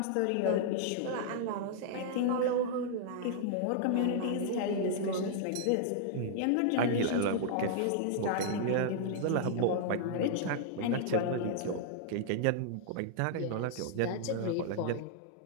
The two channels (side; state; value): both; different; correlation -0.01